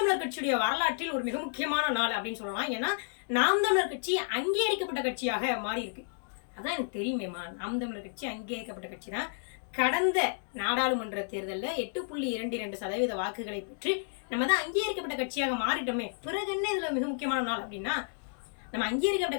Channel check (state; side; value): silent; right; digital silence